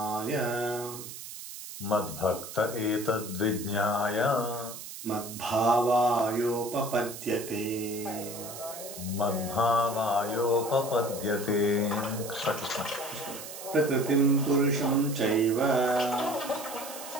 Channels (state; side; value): noise; right; hiss, 11 dB below the sound